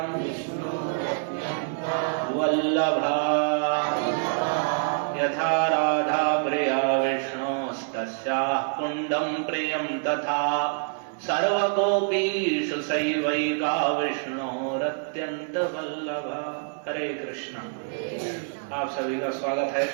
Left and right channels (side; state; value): left; silent; 61 dB below the other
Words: वल्लभा। यथा राधा प्रिया विष्णोस्तस्याः कुण्डं प्रियं तथा सर्वगोपीषु सैवैका विष्णोरत्यन्त वल्लभा। हरे कृष्ण। आप सभी का स्वागत है